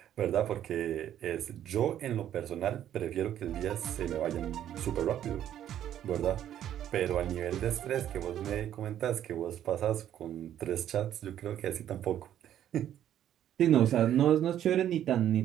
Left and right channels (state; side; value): quieter; left; 11.0 dB